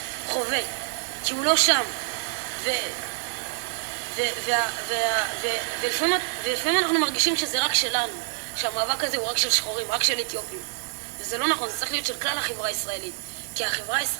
חווה. כי הוא לא שם. ולפעמים אנחנו מרגישים שזה רק שלנו. שהמאבק הזה הוא רק של שחורים, רק של אתיופים. וזה לא נכון, זה צריך להיות של כלל החברה הישראלית. כי החברה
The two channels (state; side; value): silent; left; digital silence